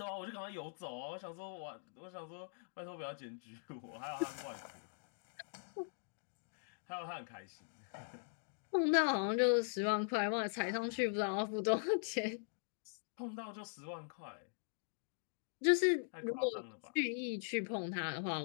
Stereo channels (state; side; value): silent; right; digital silence